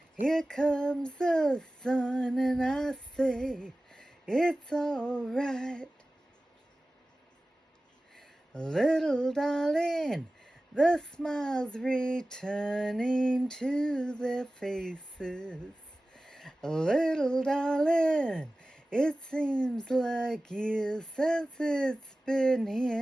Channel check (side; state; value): both; normal; correlation 0.97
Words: Here comes the sun, and I say it's all right. Little darling, the smiles returning to their faces. Little darling, it seems like years since it's been